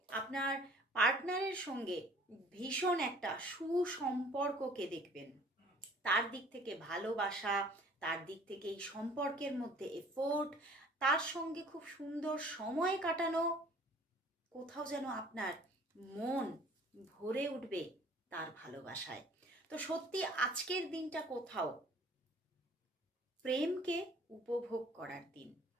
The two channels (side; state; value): both; normal; correlation 0.52